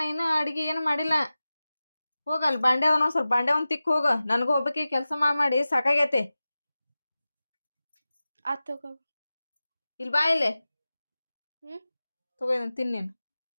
ಇನ್ನೂ ಅಡಿಗೆ ಏನು ಮಾಡಿಲ್ಲ. ಹೋಗಲ್ ಬಾಂಡೆ ಅವನ ಸ್ವಲ್ಪ ಬಾಂಡೆ ಒಂದ್ ತಿಕ್ ಹೋಗ. ನನಗೂ ಒಬ್ಬಕ್ಕೆ ಕೆಲಸ ಮಾಡಿ ಸಾಕಾಗೈತಿ. ಆತ್ ತಗೋ. ಇಲ್ಲಿ ಬಾ ಇಲ್ಲಿ. ಹ್ಮ್ ತಗೋ ಇದನ್ನ ತಿನ್ನೇನು.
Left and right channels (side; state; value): both; inverted; correlation -0.96